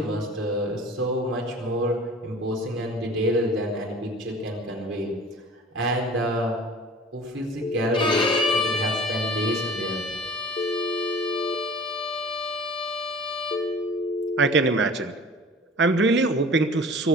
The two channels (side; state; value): both; normal; correlation 0.43